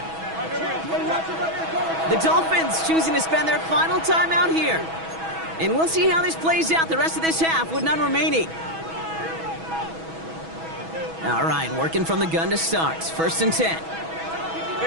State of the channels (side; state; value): left; late; 6.2 ms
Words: The Dolphins choosing to spend their final timeout here. And we'll see how this plays out the rest of this half with none remaining. All right, working from the gun to start. 1st and 10.